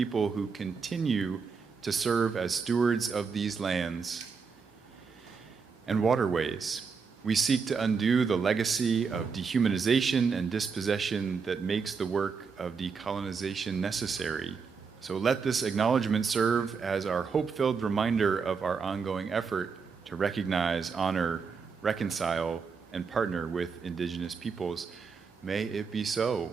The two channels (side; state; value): left; quieter; 5.5 dB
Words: who continue to serve as stewards of these lands and waterways. We seek to undo the legacy of dehumanization and dispossession that makes the work of decolonization necessary. So let this acknowledgement serve as our hope-filled reminder of our ongoing effort to recognize, honor, reconcile, and partner with Indigenous peoples. May it be so.